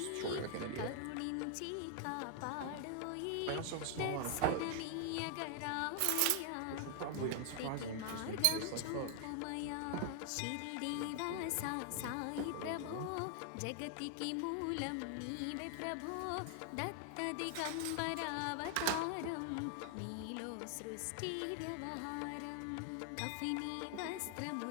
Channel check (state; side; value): different; both; correlation 0.00